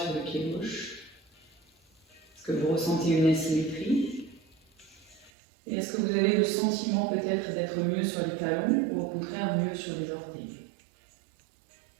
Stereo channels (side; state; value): left; drops out; at 5.3 s